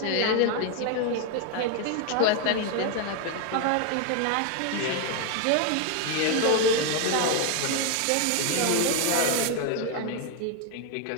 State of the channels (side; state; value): both; different; correlation 0.01